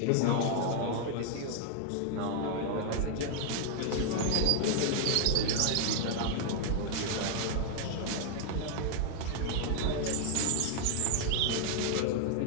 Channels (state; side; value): different; both; correlation 0.00